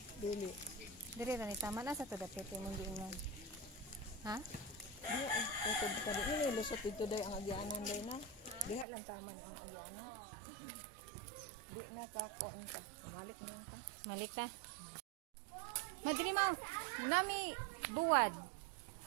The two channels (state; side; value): drops out; left; at 8.8 s